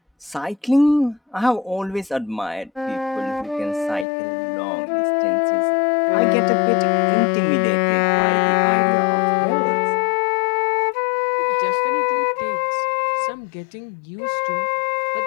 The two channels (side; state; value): right; drops out; at 4.0 s